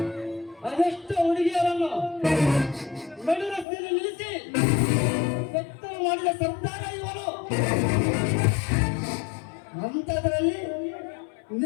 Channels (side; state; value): right; drops out; at 3.7 s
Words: ಅದೆಷ್ಟು ಹುಡುಗಿಯರನ್ನು ನಡು ರಸ್ತೆಯಲ್ಲಿ ನಿಲ್ಲಿಸಿ ಬೆತ್ತಲು ಮಾಡಿದ ಸರ್ದಾರ ಇವನು. ಅಂಥದ್ರಲ್ಲಿ